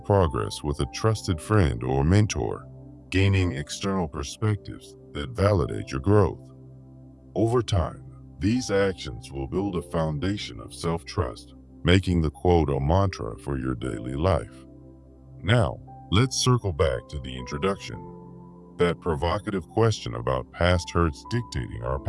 with a trusted friend or mentor, gaining external perspectives that validate your growth. Over time, these actions will build a foundation of self-trust, making the quote a mantra for your daily life. Now, let's circle back to the introduction, that provocative question about past hurts dictating our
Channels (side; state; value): both; identical; correlation 1.00